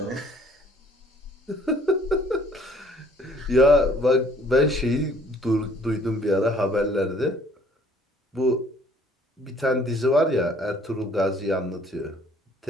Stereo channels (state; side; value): normal; both; correlation 0.58